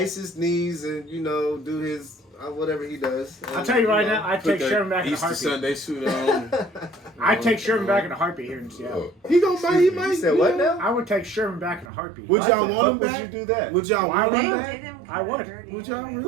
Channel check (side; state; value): left; drops out; at 11.9 s